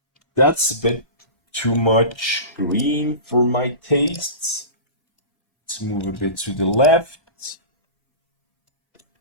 that's a bit too much green for my tastes. Let's move a bit to the left.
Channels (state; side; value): late; right; 1.3 ms